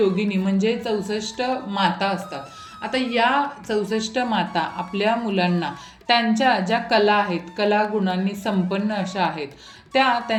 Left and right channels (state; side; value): identical; both; correlation 1.00